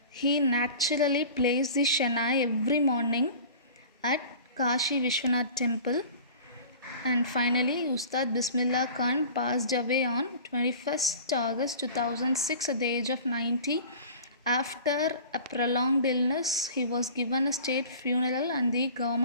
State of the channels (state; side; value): inverted; both; correlation -0.40